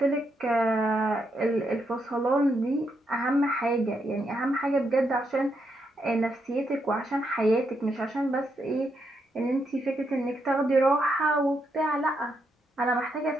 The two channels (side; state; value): both; normal; correlation 0.80